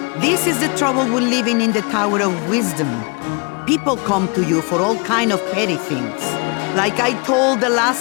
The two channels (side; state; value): right; quieter; 32.6 dB